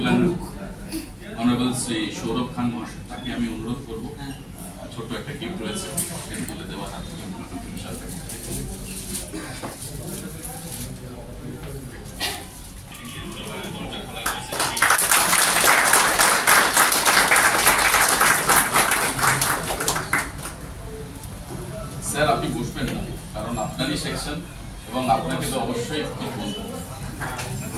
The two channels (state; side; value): identical; both; correlation 1.00